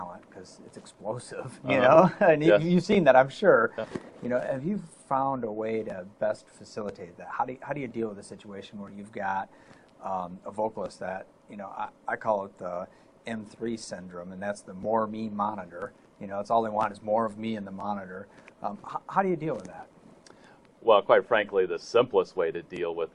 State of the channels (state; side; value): identical; both; correlation 1.00